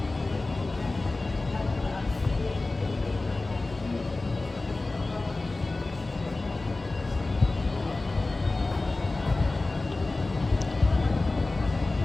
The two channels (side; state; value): right; quieter; 3.2 dB